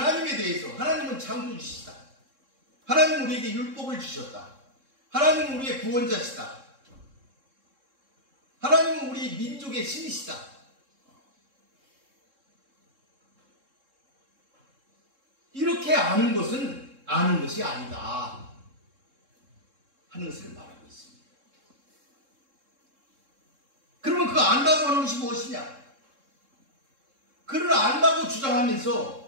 대해서, 하나님은 창조주시다, 하나님은 우리에게 율법을 주셨다, 하나님은 우리의 구원자시다, 하나님은 우리 민족의 신이시다, 이렇게 아는 것은 아는 것이 아니다 하는 것을 말하고 있습니다. 그러면 그 안다고 하는 것이 무엇이냐? 그를 안다고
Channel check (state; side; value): late; left; 3.7 ms